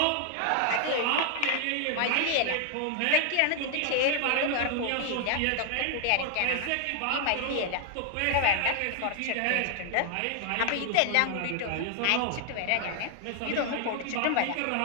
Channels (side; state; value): both; different; correlation 0.00